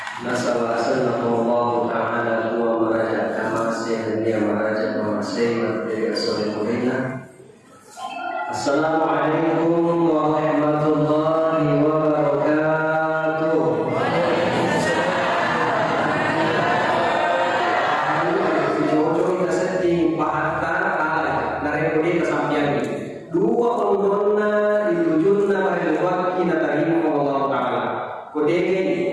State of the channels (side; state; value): both; identical; correlation 1.00